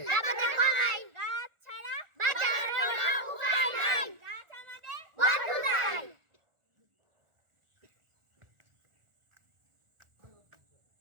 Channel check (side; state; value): left; late; 1.4 ms